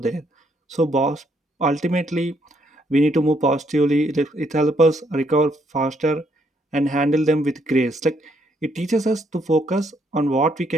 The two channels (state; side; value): normal; both; correlation 0.72